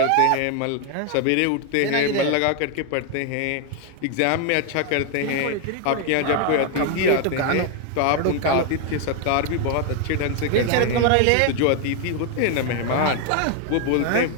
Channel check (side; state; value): both; different; correlation 0.01